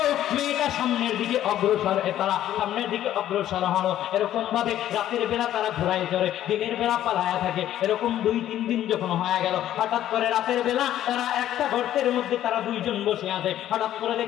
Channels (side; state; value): right; quieter; 12.1 dB